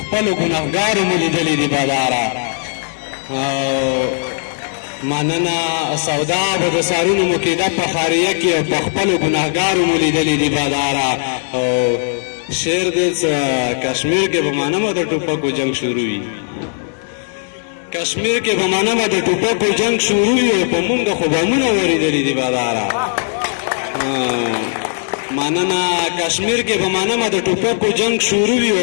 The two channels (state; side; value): silent; right; 66 dB below the other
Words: خپلو ګنهګارو مو لیدلي دي باداره. مننه سودا به د سارونو مقیده په خاریه کې، او په خپلو ګنهګارو مو لیدلي دي باداره. او شعر دی کشمیر کې به منمه د ټوپکو جنگ شروع وي، کشمیر کې به منمه د ټوپکو جنگ شروع وي، او په مونږ خو بمونه ورېدلي دي باداره. مننه کشمیر کې به منمه د ټوپکو جنگ شروع وي،